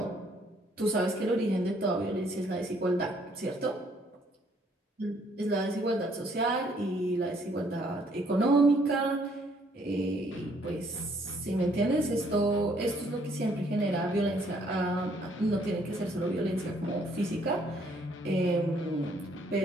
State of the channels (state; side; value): normal; both; correlation 0.66